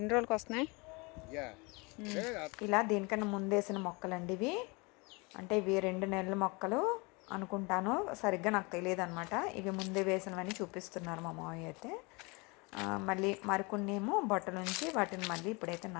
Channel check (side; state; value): right; quieter; 28.0 dB